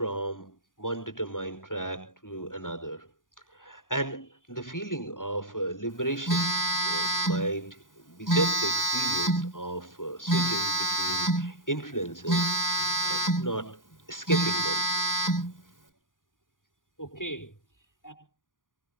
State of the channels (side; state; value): right; late; 0.89 ms